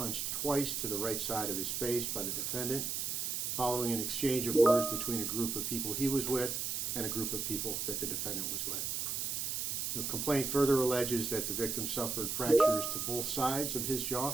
twice to the right side of his face by the defendant following an exchange of words between a group of people he was with and a group of people that the defendant was with. The complaint further alleges that the victim suffered fractures to both sides of his jaw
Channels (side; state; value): right; noise; hiss, 1 dB below the sound